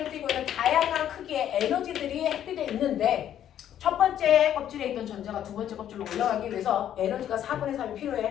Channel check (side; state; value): right; quieter; 10.6 dB